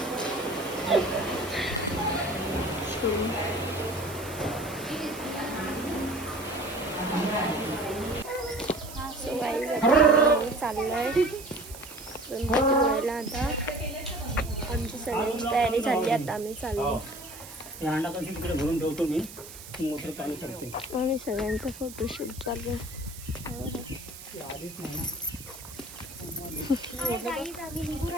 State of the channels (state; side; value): noise; right; hiss, 14 dB below the sound